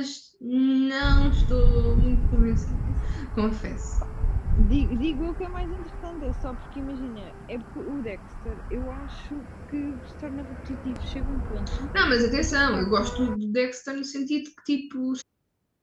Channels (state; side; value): identical; both; correlation 1.00